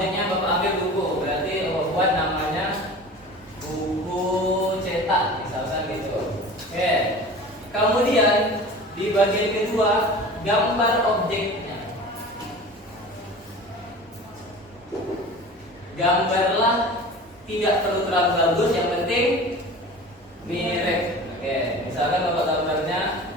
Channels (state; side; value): normal; both; correlation 0.38